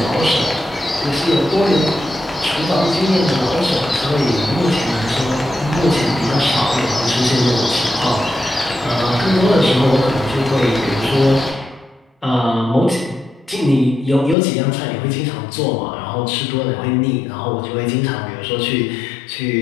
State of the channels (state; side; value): drops out; right; at 14.4 s